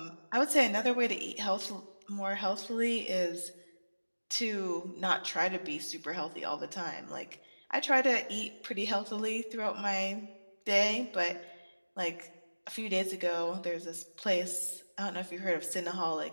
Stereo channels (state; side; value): inverted; both; correlation -1.00